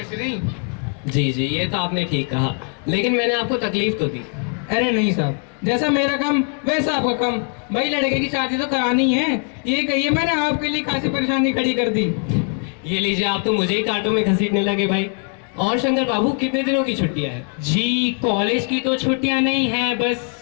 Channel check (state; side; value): quieter; right; 38.8 dB